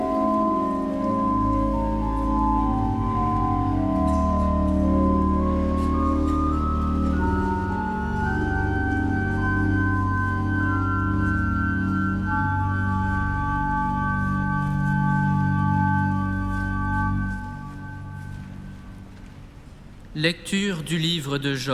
Lecture du livre de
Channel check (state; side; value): identical; both; correlation 1.00